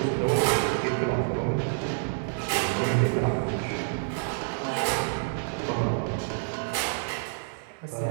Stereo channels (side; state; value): left; silent; digital silence